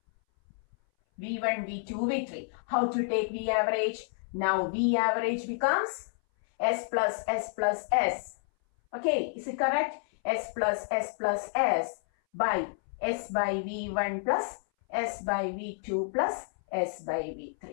V1, V2, V3. How to take V average? Now V average becomes S plus S plus S. Okay, is it correct? S plus S plus S by S by V1 plus S by V2 plus S by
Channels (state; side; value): silent; right; 58 dB below the other